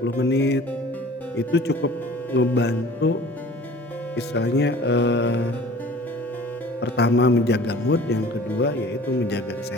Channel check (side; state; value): both; normal; correlation 0.46